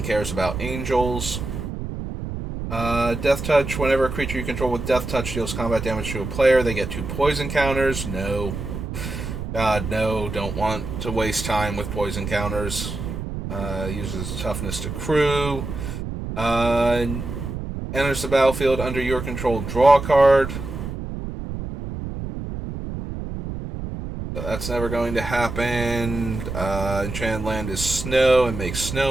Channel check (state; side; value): noise; right; rumble, 6 dB below the sound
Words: cares about angels. Death Touch, whenever a creature you control with Death Touch deals combat damage to a player, they get 2 poison counters. No. God, no, don't want to waste time with poison counters. Uses toughness to crew. Enters the battlefield under your control, draw a card. So that's never going to happen. Enchanted land is snow and makes